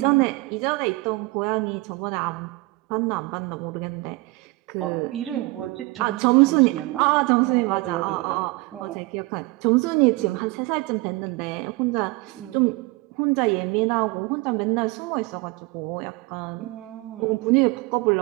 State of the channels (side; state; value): left; quieter; 23.0 dB